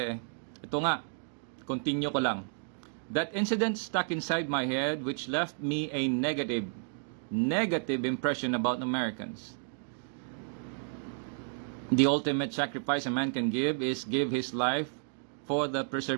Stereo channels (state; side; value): silent; left; digital silence